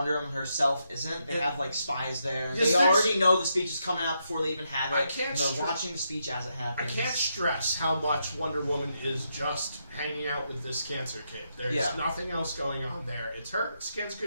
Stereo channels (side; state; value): both; inverted; correlation -0.81